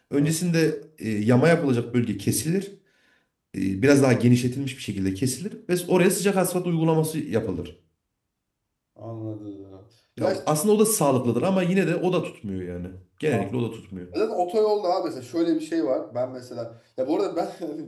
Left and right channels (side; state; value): both; identical; correlation 1.00